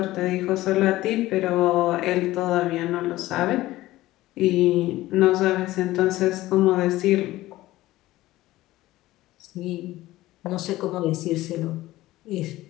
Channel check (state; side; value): quieter; right; 16.7 dB